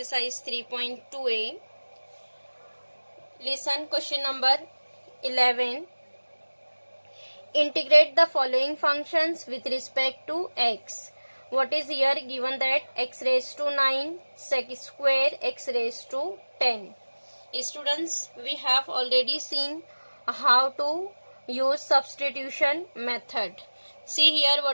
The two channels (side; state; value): both; inverted; correlation -1.00